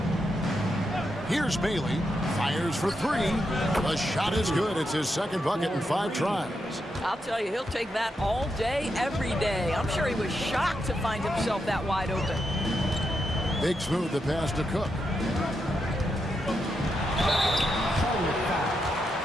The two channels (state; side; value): normal; both; correlation 0.84